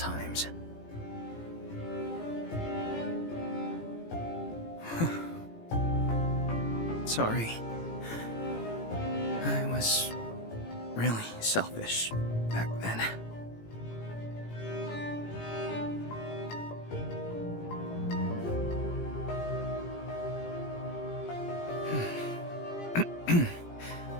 Sorry. I was really selfish back then.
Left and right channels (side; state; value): right; late; 18 ms